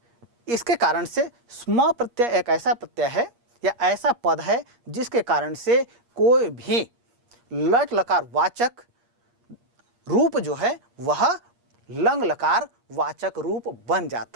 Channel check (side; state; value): left; late; 8.5 ms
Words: इसके कारण से स्म प्रत्यय एक ऐसा प्रत्यय है या ऐसा पद है जिसके कारण से कोई भी लट लकार वाचक रूप जो है वह लंग लकार वाचक रूप बन